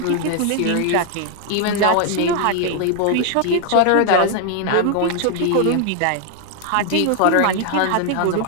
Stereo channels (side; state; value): both; different; correlation 0.00